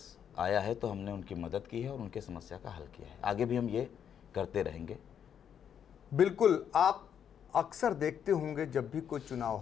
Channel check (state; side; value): quieter; right; 8.5 dB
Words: आया है तो हमने उनकी मदद की है और उनके समस्या का हल किया है। आगे भी हम ये करते रहेंगे। बिल्कुल, आप अक्सर देखते होंगे जब भी कोई चुनाव